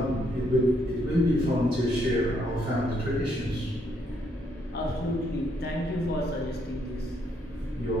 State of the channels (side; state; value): both; normal; correlation 0.73